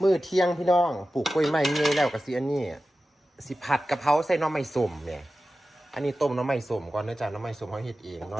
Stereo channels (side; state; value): both; normal; correlation 0.94